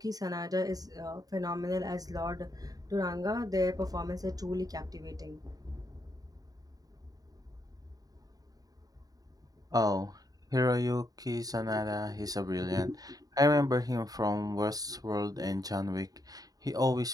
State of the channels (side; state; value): left; late; 0.18 ms